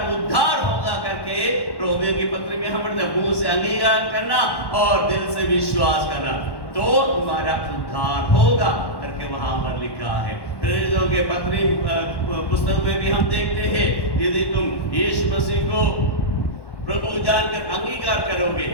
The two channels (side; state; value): right; late; 1.1 ms